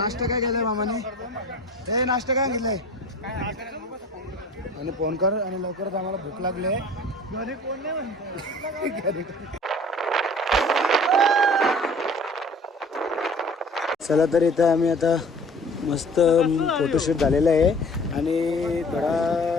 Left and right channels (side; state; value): both; normal; correlation 0.46